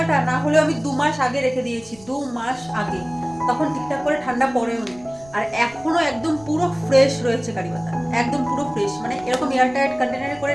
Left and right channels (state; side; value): noise; right; rumble, 24 dB below the sound